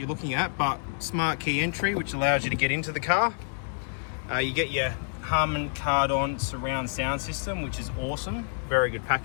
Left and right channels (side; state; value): right; silent; digital silence